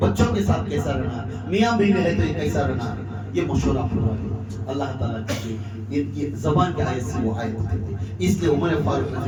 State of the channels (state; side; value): identical; both; correlation 1.00